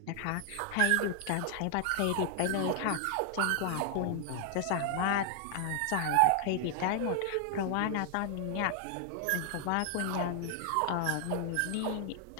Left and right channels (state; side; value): different; both; correlation 0.00